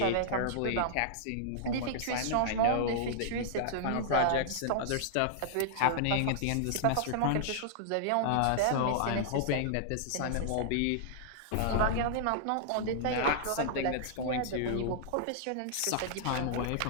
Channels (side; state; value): both; different; correlation -0.01